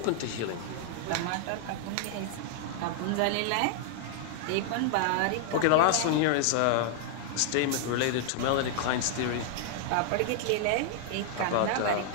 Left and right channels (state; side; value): different; both; correlation -0.01